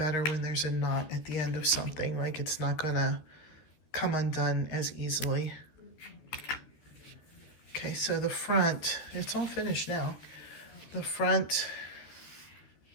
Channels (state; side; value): late; right; 13 ms